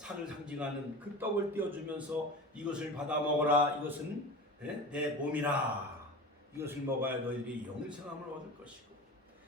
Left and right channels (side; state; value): both; normal; correlation 0.32